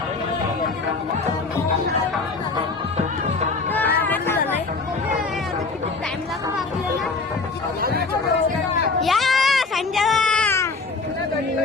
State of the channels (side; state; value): right; quieter; 4.0 dB